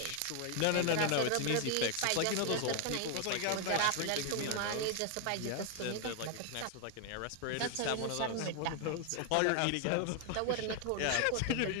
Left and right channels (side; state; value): both; different; correlation 0.00